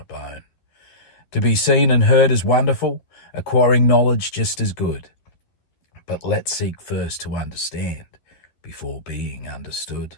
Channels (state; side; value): late; right; 12 ms